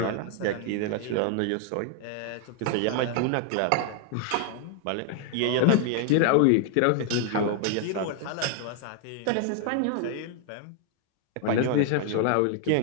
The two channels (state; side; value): different; both; correlation 0.00